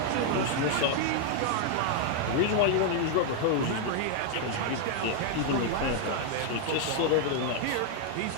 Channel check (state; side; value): different; both; correlation 0.00